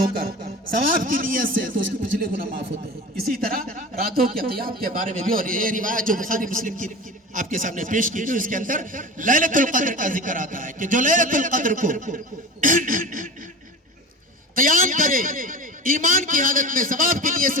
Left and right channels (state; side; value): normal; both; correlation 0.32